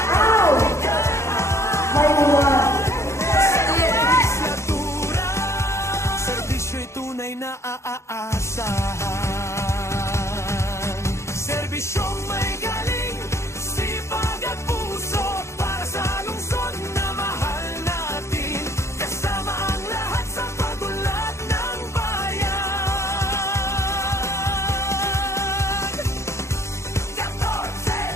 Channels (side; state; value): right; late; 0.14 ms